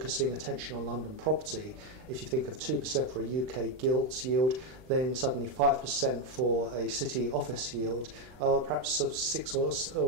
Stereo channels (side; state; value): left; late; 39 ms